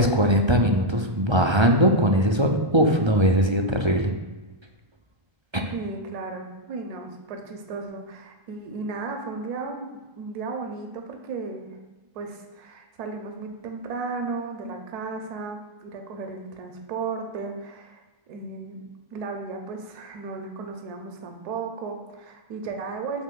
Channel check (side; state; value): left; late; 1.3 ms